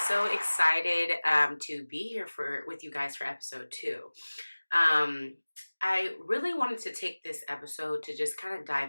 so excited to be here with you guys for episode 2. I really wanted to take this episode to just kind of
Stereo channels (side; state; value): both; inverted; correlation -1.00